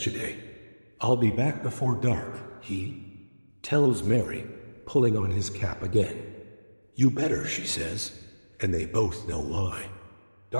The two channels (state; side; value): inverted; both; correlation -1.00